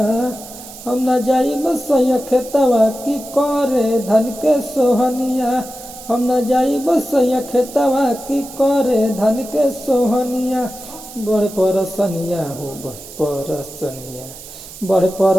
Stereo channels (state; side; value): noise; right; hiss, 15 dB below the sound